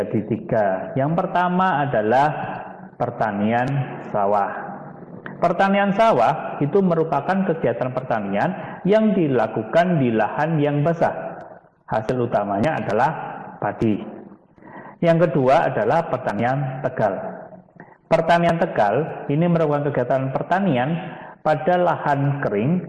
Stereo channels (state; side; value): identical; both; correlation 1.00